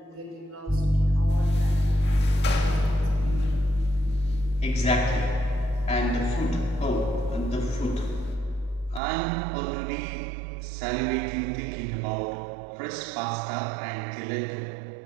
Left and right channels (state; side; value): drops out; left; at 9.0 s